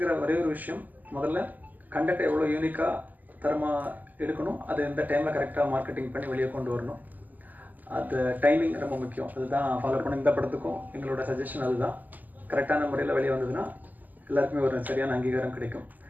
ஒரே ஒரு விஷயம், முதல்ல கண்டென்ட் எவ்வளோ யூனிக்காக தரமாக எடுக்கணும், அது எந்த டைமில் கரெக்டாக மார்க்கெட்டிங் பண்ணி வெளியே கொண்டு வரணும். அது டைமிங் ரொம்ப முக்கியம். அதுதான் ஃபாலோ பண்ண இந்த படத்துக்கும் எங்களோட சஜஷன் அதுதான். கரெக்டான முறையில் வெளியே வந்ததுன்னா எல்லாருக்குமே ஒரு சரியான அங்கீகாரம் கிடைக்கும்.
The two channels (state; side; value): late; left; 0.083 ms